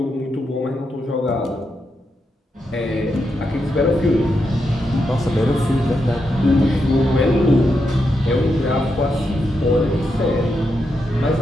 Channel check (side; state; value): both; normal; correlation 0.84